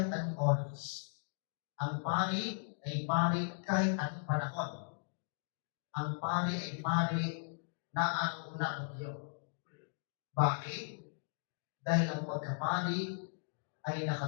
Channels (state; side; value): silent; right; digital silence